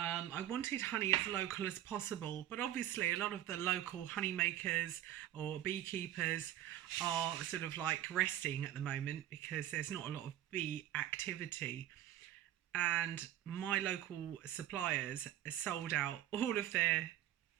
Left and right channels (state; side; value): quieter; left; 12.4 dB